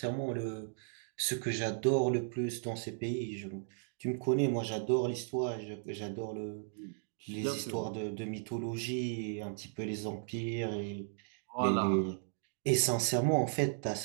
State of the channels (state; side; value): silent; left; digital silence